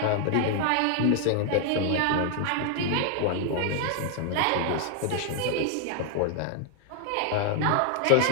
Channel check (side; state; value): both; different; correlation 0.00